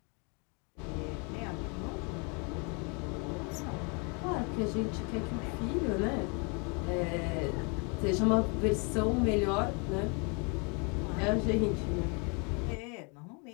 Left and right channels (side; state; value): right; quieter; 33.7 dB